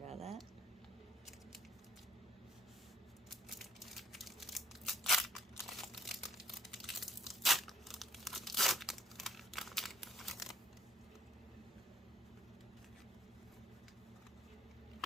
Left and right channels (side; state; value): both; normal; correlation 0.58